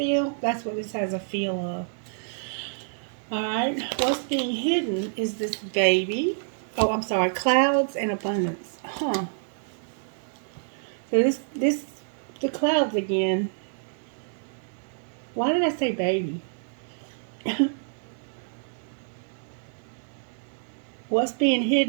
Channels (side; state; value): left; silent; digital silence